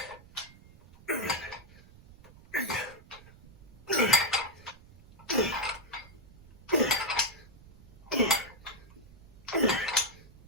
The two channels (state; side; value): noise; right; rumble, 22 dB below the sound